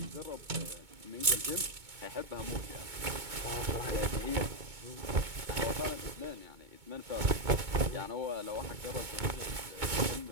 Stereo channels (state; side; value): late; left; 2.2 ms